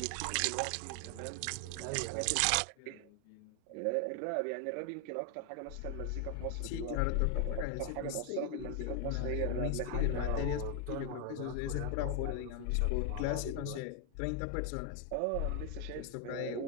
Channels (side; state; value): both; different; correlation 0.00